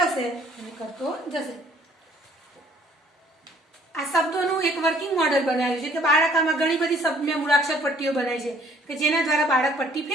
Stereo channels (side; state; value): both; normal; correlation 0.59